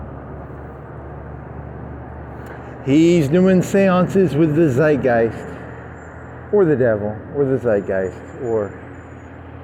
He's doing seances with the zeitgeist, or the devil, or the zeitgeist, or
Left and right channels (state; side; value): identical; both; correlation 1.00